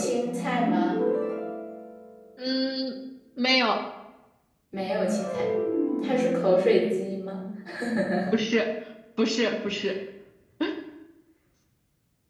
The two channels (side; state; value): both; identical; correlation 1.00